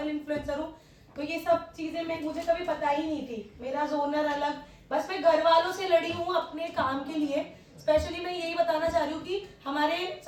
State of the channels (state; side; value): identical; both; correlation 1.00